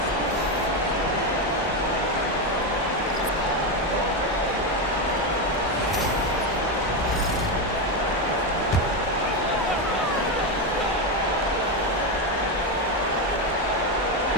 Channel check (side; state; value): both; normal; correlation 0.10